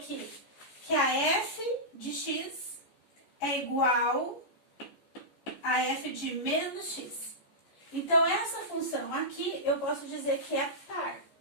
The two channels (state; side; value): late; right; 14 ms